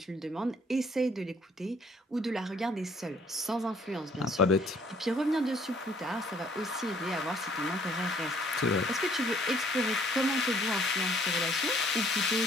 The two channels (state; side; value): normal; both; correlation 0.61